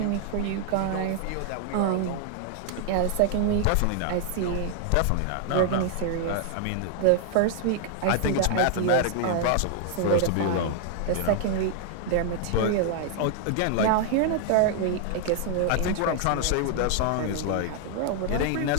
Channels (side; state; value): both; different; correlation 0.00